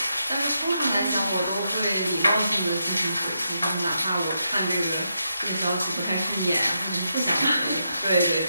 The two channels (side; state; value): both; inverted; correlation -0.83